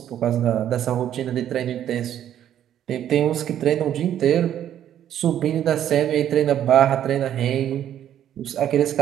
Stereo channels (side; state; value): left; quieter; 10.7 dB